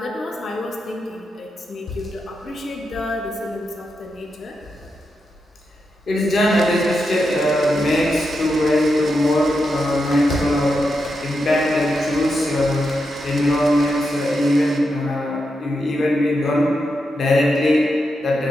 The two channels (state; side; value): normal; both; correlation 0.86